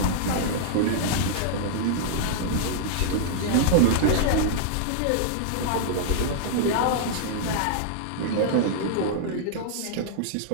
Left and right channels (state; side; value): different; both; correlation -0.02